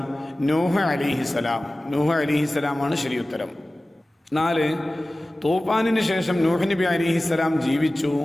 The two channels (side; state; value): both; normal; correlation 0.97